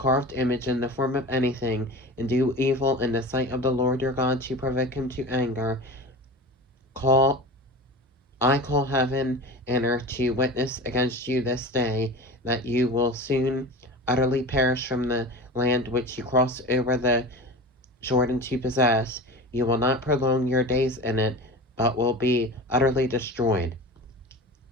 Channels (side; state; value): both; normal; correlation 0.32